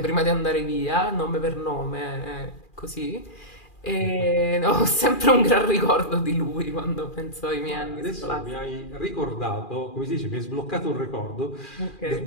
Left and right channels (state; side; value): late; right; 2.4 ms